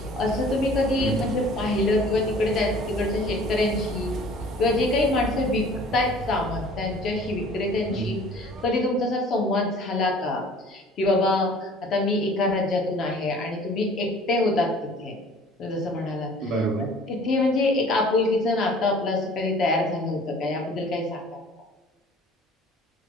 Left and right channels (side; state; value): both; normal; correlation 0.50